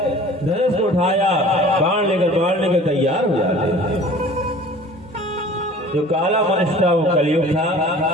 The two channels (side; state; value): both; normal; correlation 0.46